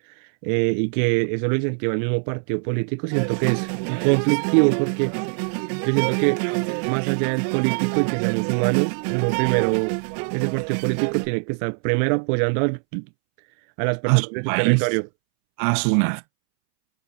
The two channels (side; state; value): left; silent; 64 dB below the other